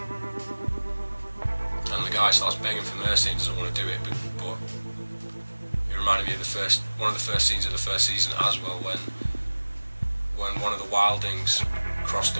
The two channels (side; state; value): both; inverted; correlation -1.00